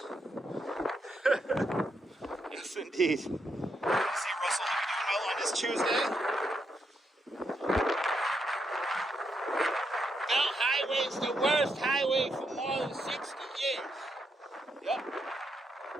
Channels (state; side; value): normal; both; correlation 0.80